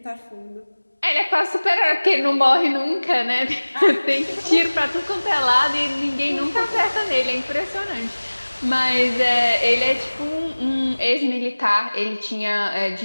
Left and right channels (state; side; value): inverted; both; correlation -1.00